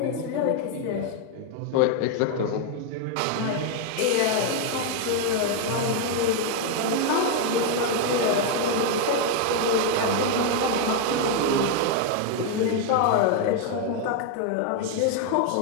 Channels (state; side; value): different; both; correlation 0.01